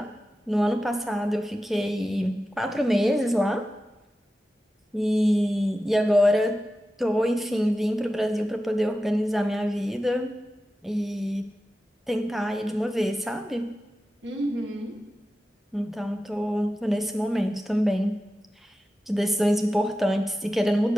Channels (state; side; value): normal; both; correlation 0.93